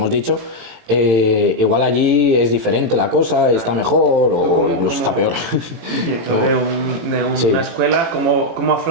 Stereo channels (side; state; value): left; late; 18 ms